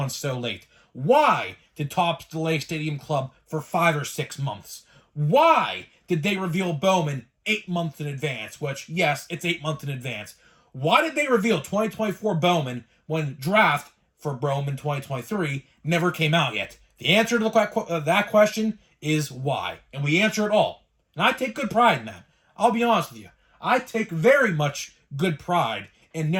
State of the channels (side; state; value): both; identical; correlation 1.00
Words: so late? Why did Topps delay Stadium Club for 5 or 6 months? Why did they reveal Bowman 8 months in advance? Which, yes, it's 8 months in advance. Why did they reveal 2024 Bowman when draft for Bowman 2023 never came out yet? The answer to that question is why. And we answer it all. And I take good pride in that. I'll be honest with you. I take very much good pride in